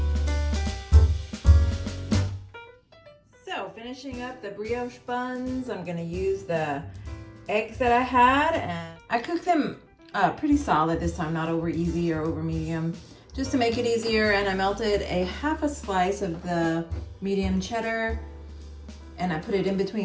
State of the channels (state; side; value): identical; both; correlation 1.00